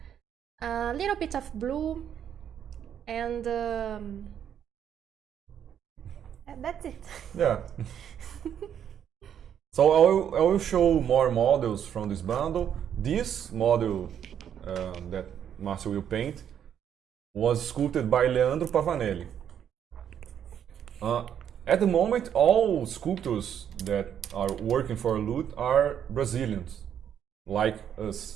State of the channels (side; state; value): left; quieter; 9.1 dB